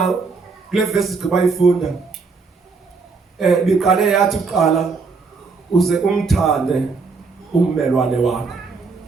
kule verse sibayifunda biqale yathi uqala uze umthande ummelwane wakho.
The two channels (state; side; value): quieter; left; 4.6 dB